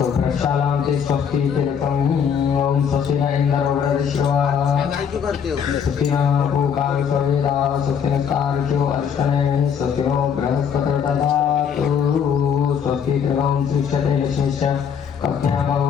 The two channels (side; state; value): right; quieter; 7.4 dB